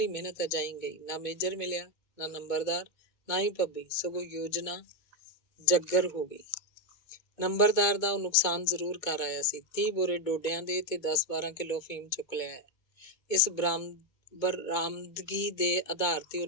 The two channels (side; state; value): right; late; 2.2 ms